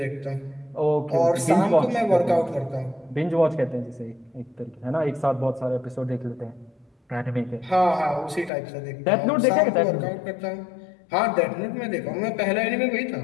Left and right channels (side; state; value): right; drops out; at 8.5 s